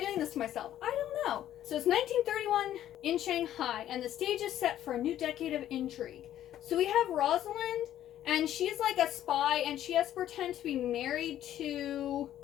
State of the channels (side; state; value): right; quieter; 11.9 dB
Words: doing this to myself? I don't know. So it's 1931 in Shanghai, and the stage is set for a new decade of intrigue. So we have Rosalind, and she's like a spy, and she has to pretend to be married to